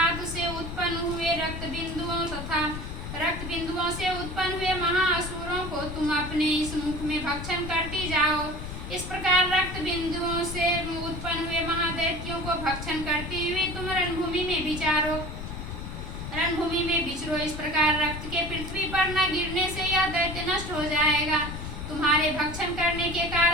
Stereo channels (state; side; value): noise; left; rumble, 7 dB below the sound